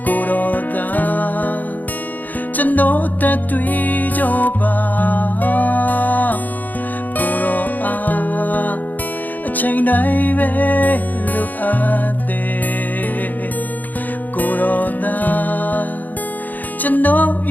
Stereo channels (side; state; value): right; late; 0.083 ms